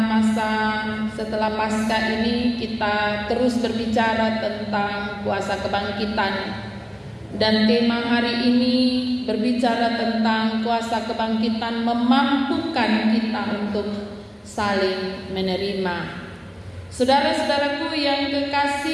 setelah Paskah ini kita terus berbicara tentang kuasa kebangkitan. Dan tema hari ini berbicara tentang kuasa kebangkitan memampukan kita untuk saling menerima. Saudara-saudaraku yang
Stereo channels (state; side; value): identical; both; correlation 1.00